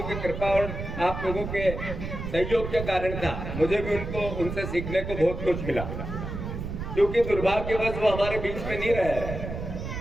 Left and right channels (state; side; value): noise; right; rumble, 6 dB below the sound